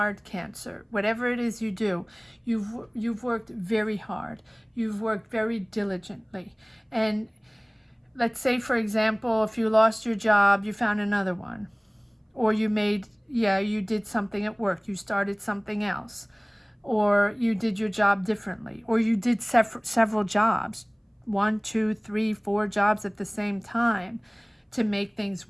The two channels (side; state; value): both; identical; correlation 1.00